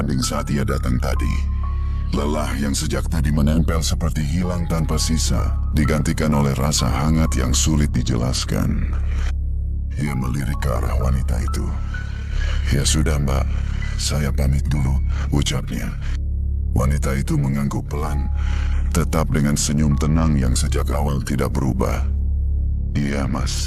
saat ia datang tadi. Lelah yang sejak tadi menempel seperti hilang tanpa sisa, digantikan oleh rasa hangat yang sulit dijelaskan. Ia melirik ke arah wanita itu. "Ya sudah, Mbak, saya pamit dulu," ucapnya. Wanita itu mengangguk pelan, tetap dengan senyum tenang yang sejak awal tidak berubah. "Iya,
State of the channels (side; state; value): both; identical; correlation 1.00